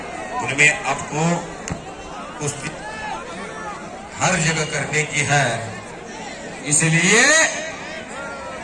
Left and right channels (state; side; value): identical; both; correlation 1.00